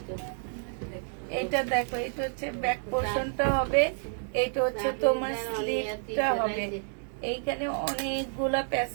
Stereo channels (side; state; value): left; silent; 56 dB below the other